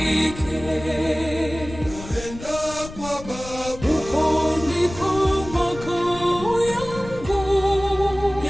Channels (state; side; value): noise; left; rumble, 13 dB below the sound